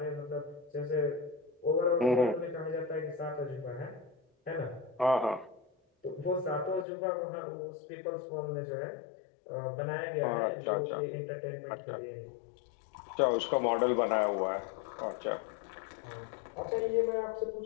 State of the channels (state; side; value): drops out; right; at 6.9 s